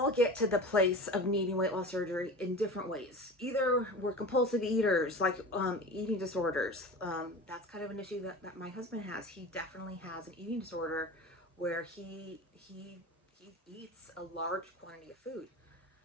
get to the place of needing weight loss surgery in different ways. Either we're compulsive eaters, like eating disorders. That's kind of an issue that my husband has. He definitely has an eating disorder where he eats a large quantity of food.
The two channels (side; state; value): both; normal; correlation 0.34